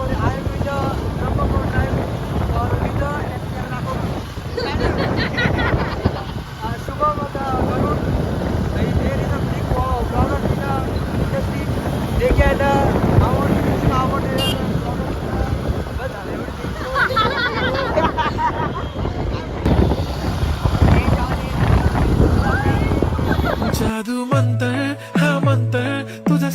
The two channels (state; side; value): identical; both; correlation 1.00